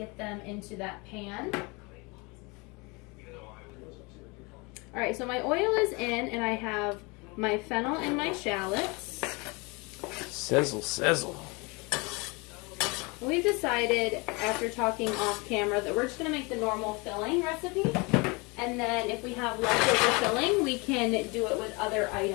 them into that pan. Alright, so my oil is in, and I have my fennel and my shallots. Sizzle, sizzle. We've decided, after talking off camera, that we're just going to make the normal filling recipe. And then if we have leftover filling, we can do it with other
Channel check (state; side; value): quieter; right; 28.0 dB